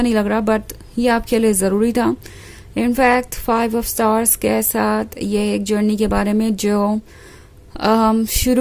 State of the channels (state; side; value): identical; both; correlation 1.00